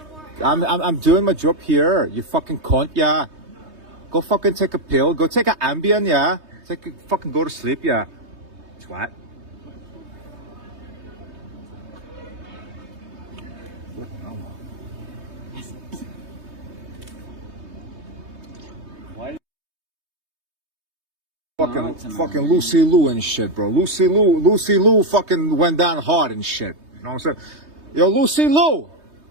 I'm doing my job here. You fucking cunt, yeah. Go fucking take a pill. Go take an Ambien, yeah. Fucking go to sleep, yeah. Twat. Fucking Lucy Liu and shit, bro. Lucy Liu fucking went down hard and shit. You know what I'm saying? Yo, Lucy Liu,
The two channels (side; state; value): left; late; 3.2 ms